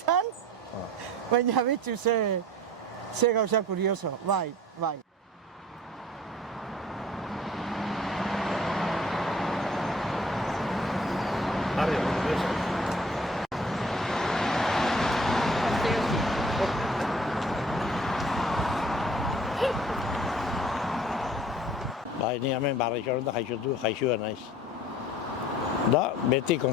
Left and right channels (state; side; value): normal; both; correlation 0.50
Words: baina betxu ze gauza kurioso, bai. Bai, ni hemen barrixoren da jaixua naiz. Da, beti